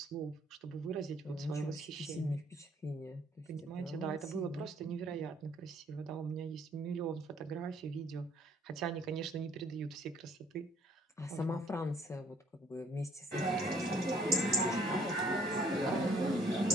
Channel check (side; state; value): both; normal; correlation 0.61